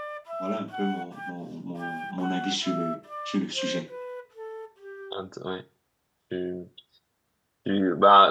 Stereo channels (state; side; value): identical; both; correlation 1.00